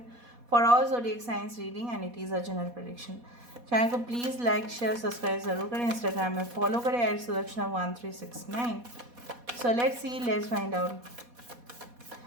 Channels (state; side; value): late; left; 4.1 ms